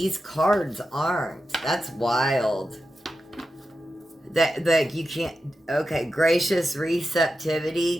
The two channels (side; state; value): both; normal; correlation 0.90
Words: cards aren't. That's wild. That you can't... Okay, gracious